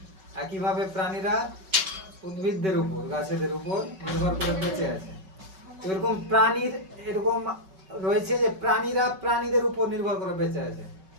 একইভাবে প্রাণীরা উদ্ভিদদের উপর, গাছেদের উপর নির্ভর করে বেঁচে আছে। এরকম প্রাণীর এরকম রয়েছে যে প্রাণীরা প্রাণীদের উপর নির্ভর করে বেঁচে আছে।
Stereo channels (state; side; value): late; left; 5.3 ms